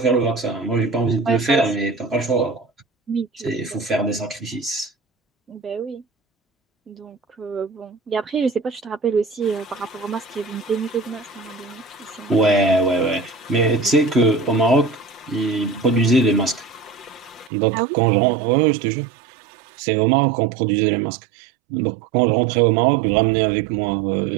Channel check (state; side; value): drops out; left; at 17.5 s